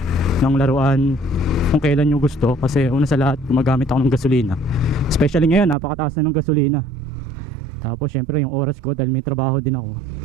ng laruan kung kailan nyo gusto. Kasi una sa lahat gumagamit ako ng gasolina. Especially ngayon napakataas na ng gasolina. Tapos syempre yung oras ko dahil may trabaho din ako,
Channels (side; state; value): left; drops out; at 5.8 s